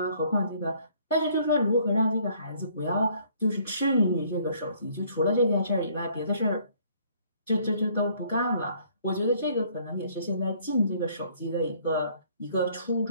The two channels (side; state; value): both; inverted; correlation -0.61